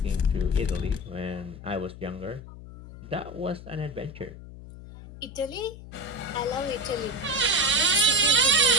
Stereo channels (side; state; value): left; noise; hum, 15 dB below the sound